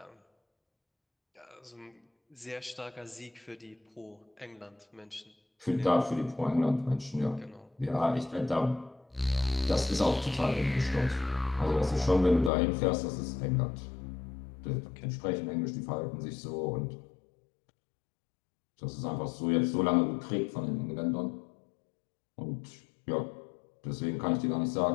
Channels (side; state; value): right; drops out; at 12.5 s